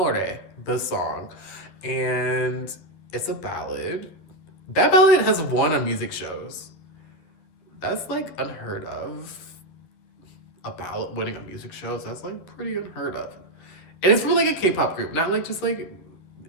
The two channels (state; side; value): late; right; 11 ms